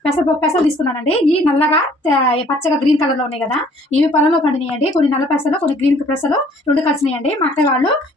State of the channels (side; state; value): both; normal; correlation 0.57